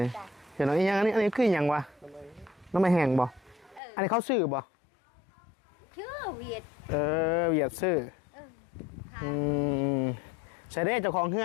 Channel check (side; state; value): right; drops out; at 3.8 s